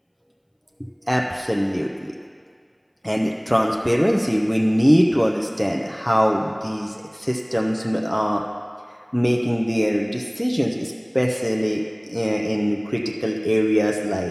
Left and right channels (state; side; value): identical; both; correlation 1.00